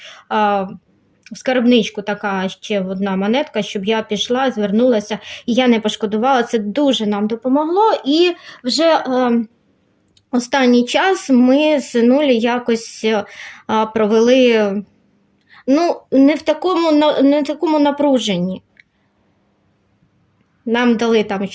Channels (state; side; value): identical; both; correlation 1.00